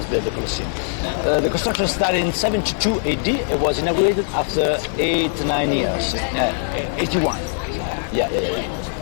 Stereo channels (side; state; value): right; silent; digital silence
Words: built the Colosseum. The construction started in 72 AD. It was inaugurated after 9 years. 81. Yeah.